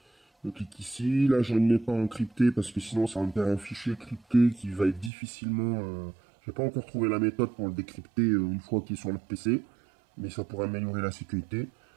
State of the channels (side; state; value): left; drops out; at 5.1 s